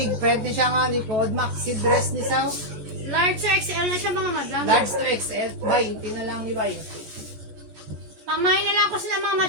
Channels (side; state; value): left; late; 14 ms